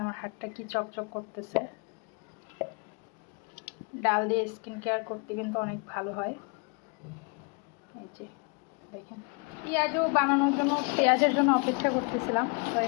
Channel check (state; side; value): quieter; right; 33.3 dB